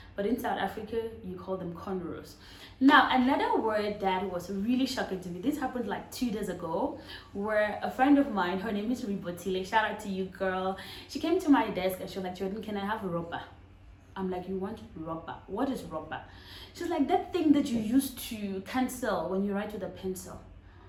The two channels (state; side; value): identical; both; correlation 1.00